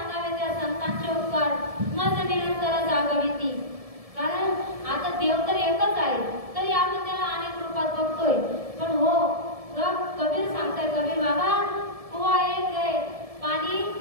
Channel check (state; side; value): late; left; 1.7 ms